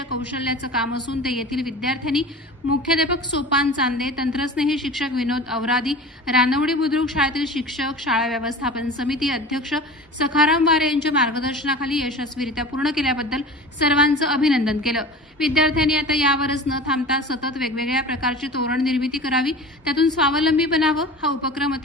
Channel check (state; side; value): normal; both; correlation 0.36